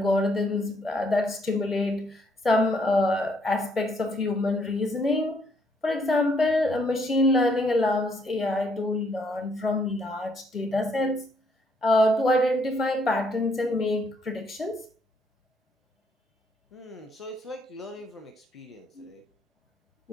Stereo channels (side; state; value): both; normal; correlation 0.70